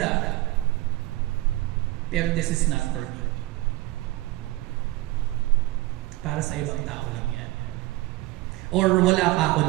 Pero this is not for me. Para sa ibang tao lang yan. Or wala pa ako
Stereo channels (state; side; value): quieter; left; 18.7 dB